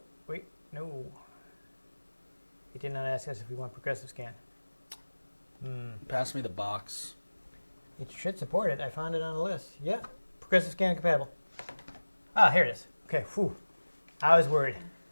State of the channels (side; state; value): both; inverted; correlation -1.00